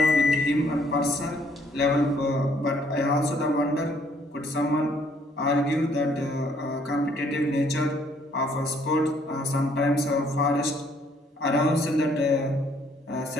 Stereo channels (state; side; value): normal; both; correlation 0.64